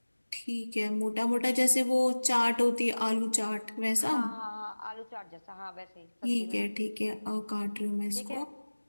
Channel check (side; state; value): both; inverted; correlation -1.00